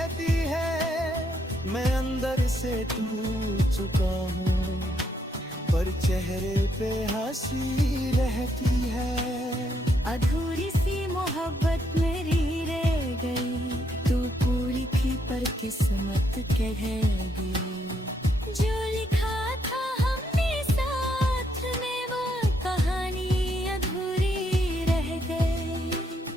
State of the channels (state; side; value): normal; both; correlation 0.75